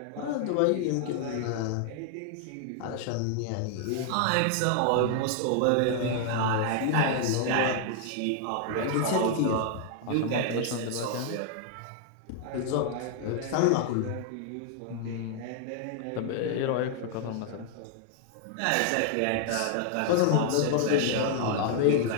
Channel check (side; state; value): both; different; correlation 0.00